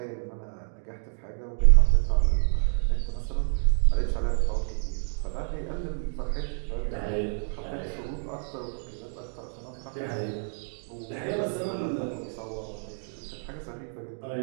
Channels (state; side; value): silent; left; 59 dB below the other